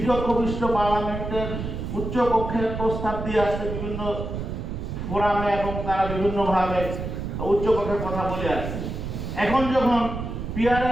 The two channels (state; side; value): noise; right; rumble, 5 dB below the sound